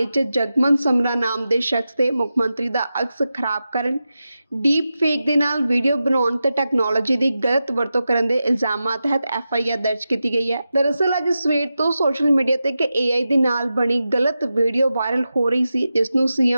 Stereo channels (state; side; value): inverted; both; correlation -0.91